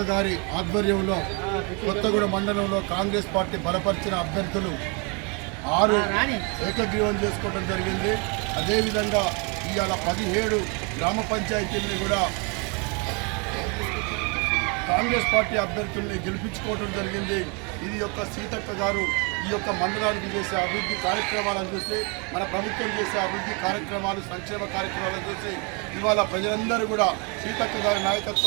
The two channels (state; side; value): quieter; left; 33.2 dB